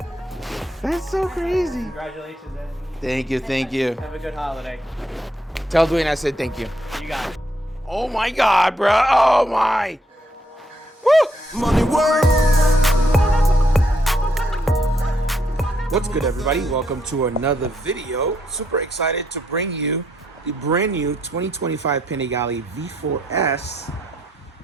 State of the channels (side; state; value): both; normal; correlation 0.75